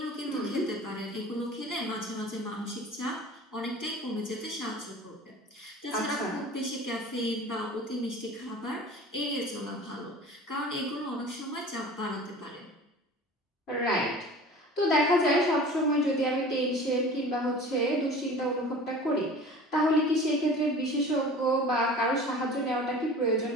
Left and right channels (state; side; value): normal; both; correlation 0.41